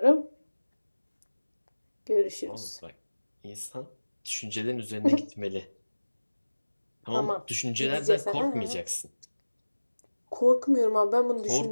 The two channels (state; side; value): inverted; both; correlation -1.00